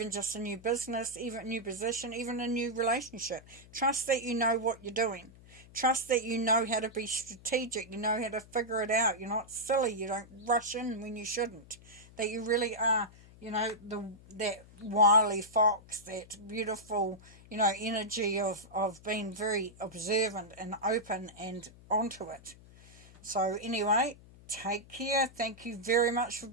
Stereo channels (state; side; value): noise; left; hum, 22 dB below the sound